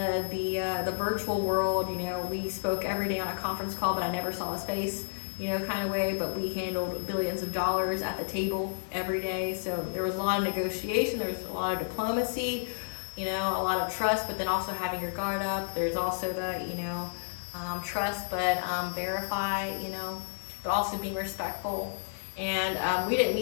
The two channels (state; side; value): silent; right; digital silence